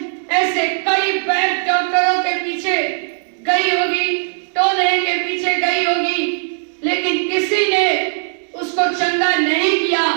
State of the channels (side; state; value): left; silent; digital silence